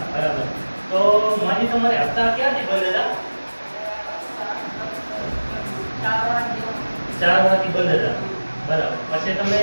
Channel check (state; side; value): inverted; both; correlation -1.00